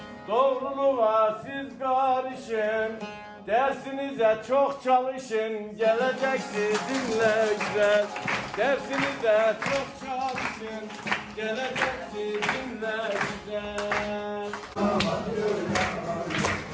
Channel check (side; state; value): both; identical; correlation 1.00